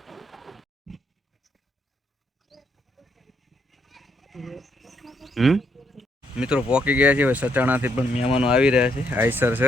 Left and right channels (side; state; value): both; normal; correlation 0.74